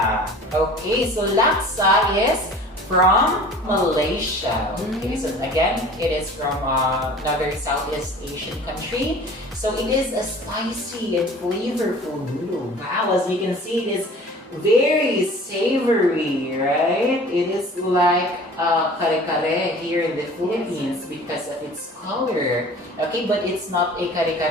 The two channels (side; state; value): both; normal; correlation 0.44